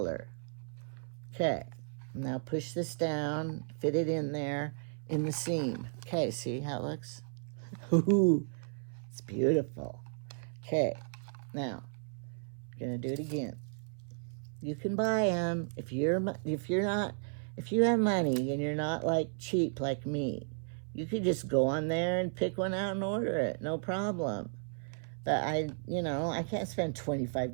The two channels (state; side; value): silent; left; 55 dB below the other